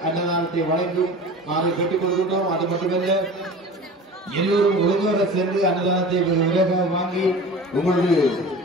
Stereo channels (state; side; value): normal; both; correlation 0.37